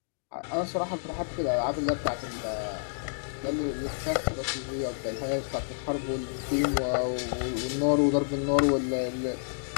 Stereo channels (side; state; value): right; silent; digital silence